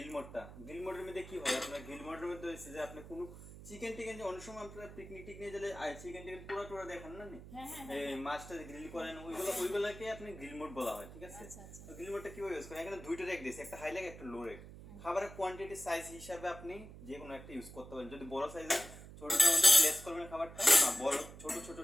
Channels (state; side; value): noise; right; hum, 15 dB below the sound